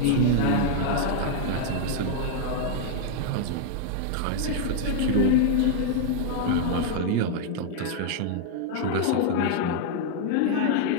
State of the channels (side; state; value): both; different; correlation 0.00